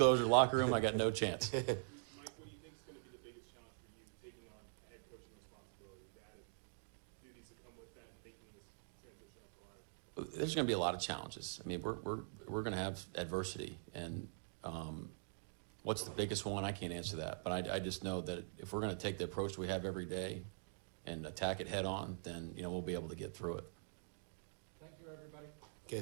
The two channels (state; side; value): silent; left; digital silence